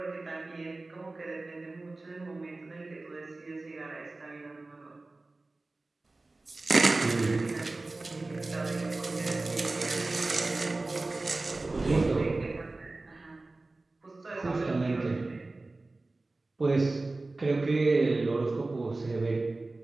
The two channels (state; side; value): quieter; left; 3.2 dB